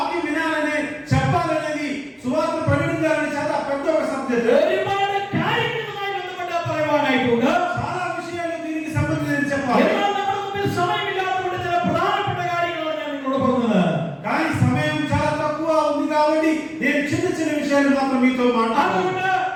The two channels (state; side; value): identical; both; correlation 1.00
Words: వినాలనే చెప్పాలనేది, సువార్త ప్రకటించాలని చాలా పెద్ద ఒక సబ్జెక్ట్. ഒരുപാട് കാര്യങ്ങളുമായി ബന്ധപ്പെട്ട് പറയുവാനായിട്ടുണ്ട്. చాలా విషయాలు దీనికి సంబంధించి చెప్పాలి. എന്നാൽ നമ്മുടെ മുമ്പിൽ സമയമില്ലാത്തതുകൊണ്ട് ചില പ്രധാനപ്പെട്ട കാര്യങ്ങളാണ് ഞാൻ നിങ്ങളോട് പറഞ്ഞത്. కానీ సమయం చాలా తక్కువ ఉంది కాబట్టి నేను చిన్న విషయాలు మాత్రం మీతో మాట్లాడాలి. അതുകൊണ്ട്